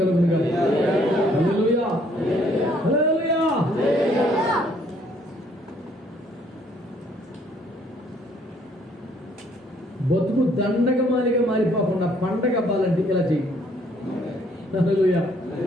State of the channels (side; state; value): both; normal; correlation 0.64